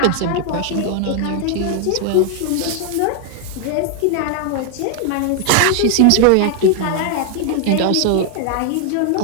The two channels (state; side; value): different; both; correlation 0.00